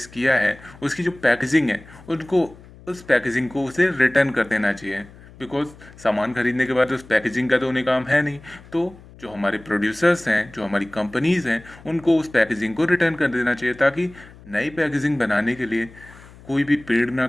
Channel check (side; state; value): left; noise; hum, 21 dB below the sound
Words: किया है उसकी जो पैकेजिंग है उनको उस पैकेजिंग को उसे रिटर्न कर देना चाहिए। बिकॉज सामान खरीदने के बाद उस पैकेजिंग का तो उन्हें काम है नहीं, तो जो हमारे प्रोड्यूसर्स हैं, जो हमारी कंपनीज हैं, उनको उस पैकेजिंग को रिटर्न कर देना चाहिए ताकि नई पैकेजिंग बनाने के लिए कोई भी पेड़ ना